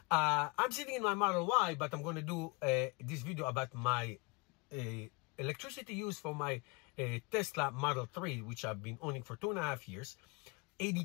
I'm sitting in my Model Y, but I'm going to do this video about my electricity use for my Tesla Model 3, which I've been owning for 2.5 years,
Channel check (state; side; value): quieter; right; 27.8 dB